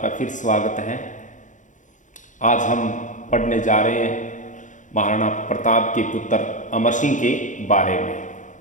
फिर स्वागत है। आज हम पढ़ने जा रहे हैं महाराणा प्रताप के पुत्र अमर सिंह के बारे में।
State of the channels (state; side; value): late; right; 0.36 ms